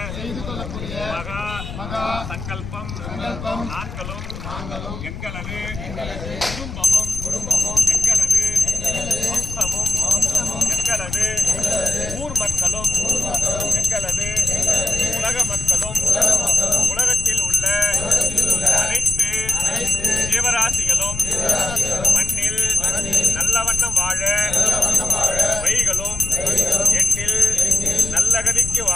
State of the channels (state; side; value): noise; left; rumble, 9 dB below the sound